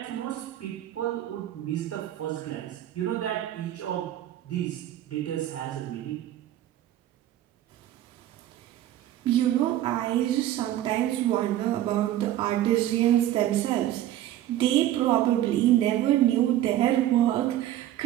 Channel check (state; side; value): quieter; left; 12.9 dB